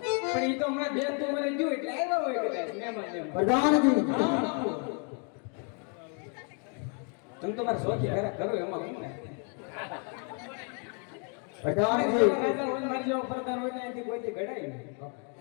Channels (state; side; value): quieter; right; 39.2 dB